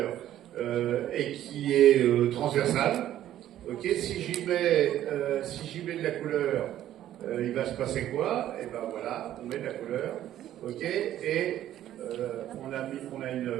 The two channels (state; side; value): quieter; left; 12.3 dB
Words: et qui est transversal. Ok, si j'y mets de la couleur, il va se passer quoi? Et ben voilà, on met de la couleur. Ok, et